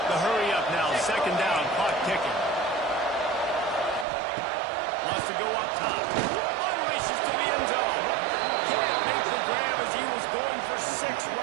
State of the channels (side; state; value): left; drops out; at 4.0 s